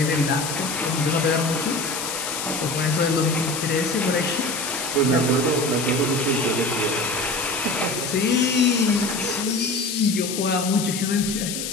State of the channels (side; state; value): left; noise; hiss, 5 dB below the sound